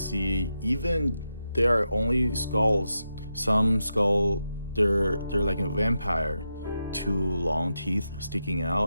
even there are only skulls. Some skull they're like a vampire, two long teeth sticking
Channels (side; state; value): both; inverted; correlation -0.87